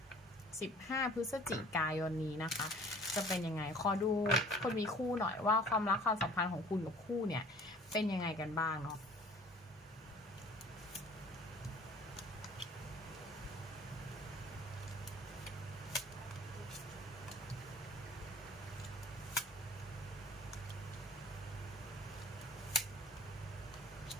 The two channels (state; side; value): normal; both; correlation 0.49